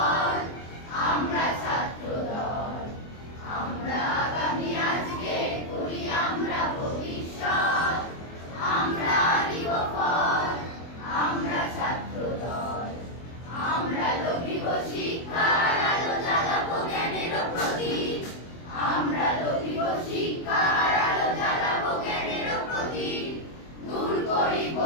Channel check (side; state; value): right; late; 24 ms